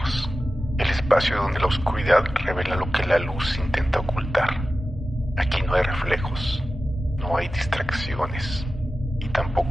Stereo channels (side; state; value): both; normal; correlation 0.94